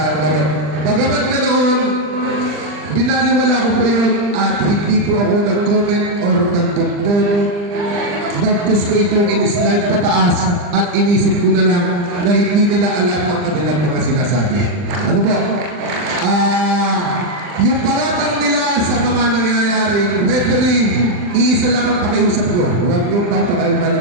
laro. Bagamat ganoon, binaliwala ko po yun at hindi po ako nag-comment or nagtuntun. Bagkus ko itong in-slide pataas at inisip ko na lang na hindi nila alam ang kanilang mga sinasabi. Ano po? Yung paratang nila sa mga nangyayaring referee, iisa lang ang pakiusap ko. Huwag yung papakailan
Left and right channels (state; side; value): late; left; 39 ms